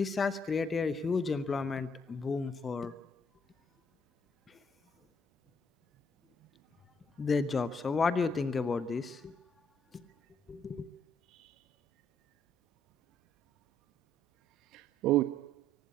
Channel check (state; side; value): normal; both; correlation 0.70